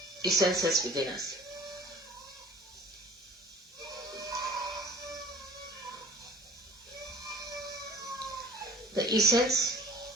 essences within us. The essence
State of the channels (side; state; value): both; normal; correlation 0.48